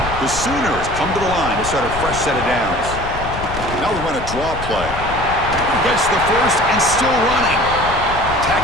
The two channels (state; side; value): noise; left; rumble, 9 dB below the sound